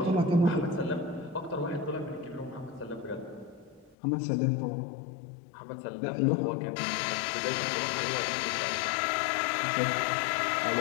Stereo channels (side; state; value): right; drops out; at 4.0 s